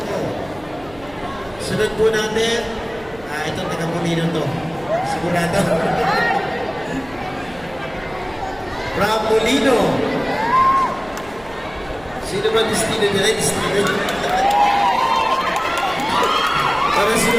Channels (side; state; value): right; noise; hum, 22 dB below the sound